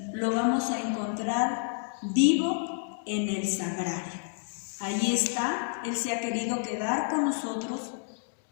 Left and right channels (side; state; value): right; silent; digital silence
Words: Lo vamos a encontrar vivo en el sagrario. Ahí está, Él se ha querido quedar con nosotros